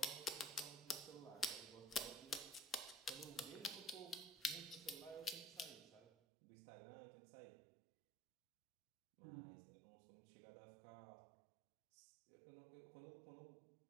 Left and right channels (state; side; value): drops out; left; at 6.1 s